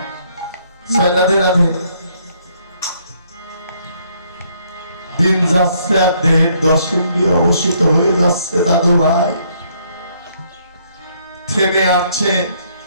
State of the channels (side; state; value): both; inverted; correlation -0.68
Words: রাধে রাধে। দিন যাচ্ছে আর দেহের 10 ইন্দ্রিয় অবশিষ্ট হয়ে যাচ্ছে দাদু ভাই, থেমে আসছে।